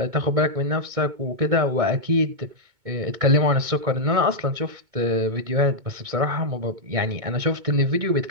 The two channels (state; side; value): late; left; 2.2 ms